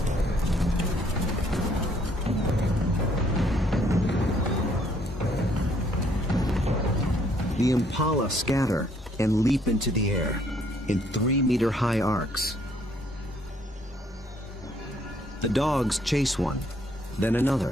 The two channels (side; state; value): both; normal; correlation 0.66